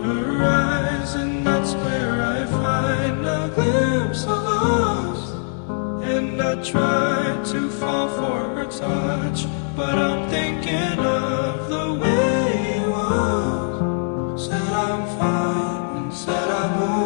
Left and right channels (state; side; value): silent; right; digital silence